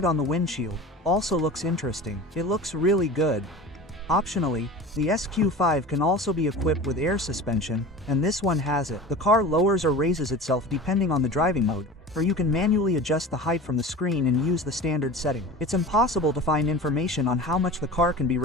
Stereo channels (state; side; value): normal; both; correlation 0.35